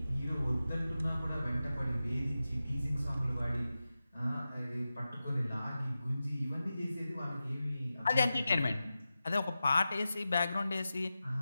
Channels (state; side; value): inverted; both; correlation -0.93